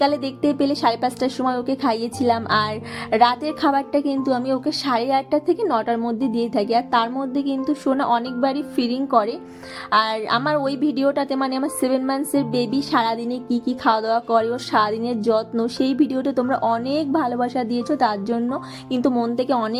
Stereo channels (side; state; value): both; identical; correlation 1.00